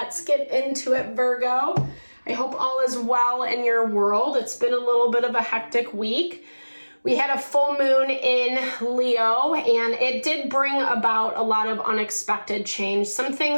get into it, Virgo. I hope all is well in your world. It's been a little bit of a hectic week. We had a full moon in Leo, and it did bring about a lot of unexpected change. Some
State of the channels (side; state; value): both; inverted; correlation -1.00